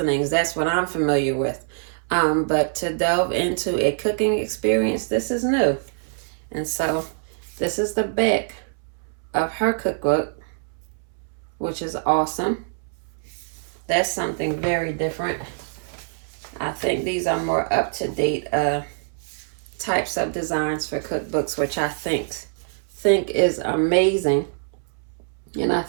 That's what I'm familiar with. But to delve into a cooking experience, this is new. And so this is the back of her cookbook, which is awesome. That's something very different. I think these are more up-to-date types of designs for cookbooks, which I think is amazing. And I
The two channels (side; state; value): left; silent; 62 dB below the other